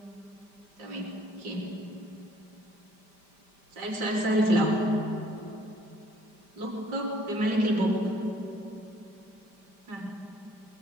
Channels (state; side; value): late; left; 5.1 ms